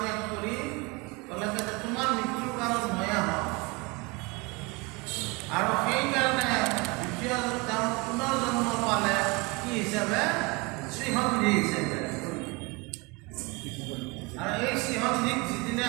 কৰি ক'লে যে তোমাৰ মৃত্যুৰ কাৰণ ময়ে হওঁ। আৰু সেইকাৰণে দ্বিতীয় তেওঁ পুনৰ্জন্ম পালে কি হিচাপে, শ্ৰীসন্ধি হিচাপে। আৰু এই শ্ৰীসন্ধিক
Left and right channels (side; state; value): left; quieter; 27.0 dB